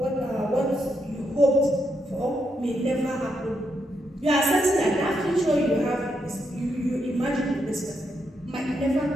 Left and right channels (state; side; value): normal; both; correlation 0.80